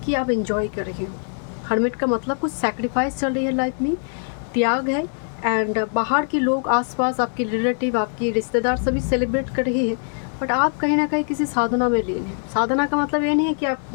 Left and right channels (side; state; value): right; silent; digital silence